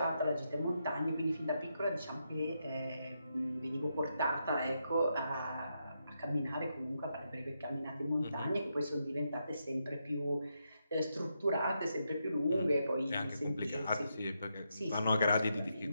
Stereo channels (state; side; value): inverted; both; correlation -0.82